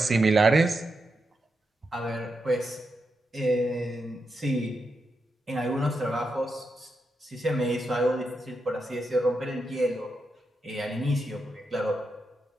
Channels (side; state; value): both; normal; correlation 0.86